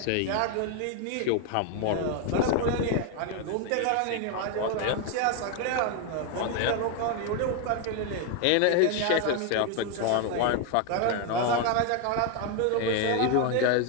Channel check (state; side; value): different; both; correlation 0.01